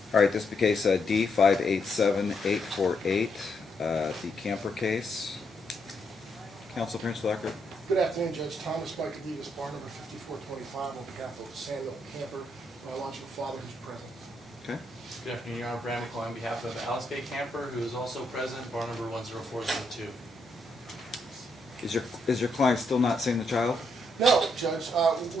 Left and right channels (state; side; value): normal; both; correlation 0.78